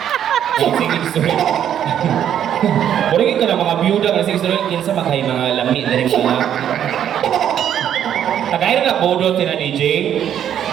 Sige, sorry. Murag ka na mga biyuda kasi sorry kinsa maghay mga lami na rin mga. Tagay na bodo tina DJ.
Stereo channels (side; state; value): left; quieter; 9.9 dB